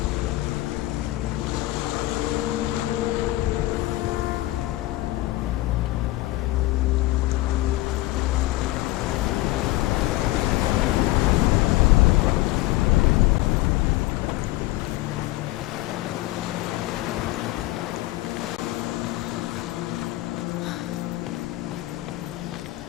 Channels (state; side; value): quieter; right; 18.1 dB